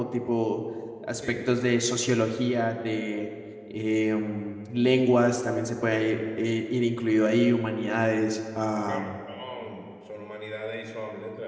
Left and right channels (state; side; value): identical; both; correlation 1.00